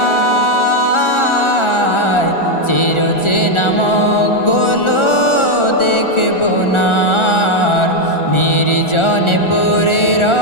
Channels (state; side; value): late; right; 1.4 ms